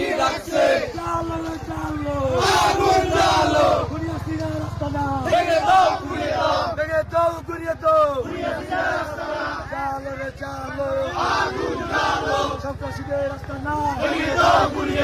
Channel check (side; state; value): both; identical; correlation 1.00